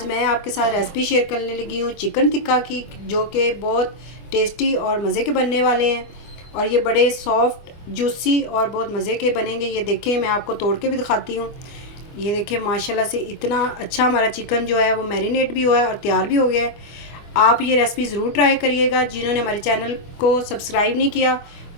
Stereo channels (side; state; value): right; late; 24 ms